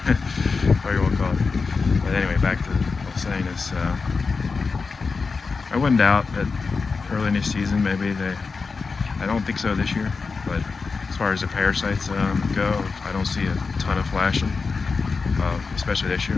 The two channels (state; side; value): quieter; right; 4.6 dB